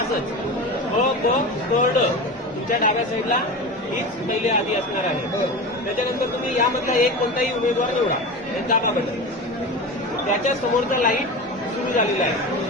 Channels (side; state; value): both; normal; correlation 0.28